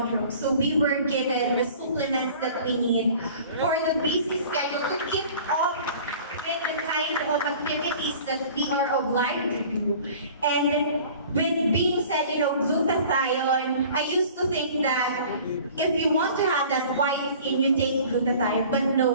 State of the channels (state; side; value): inverted; both; correlation -0.46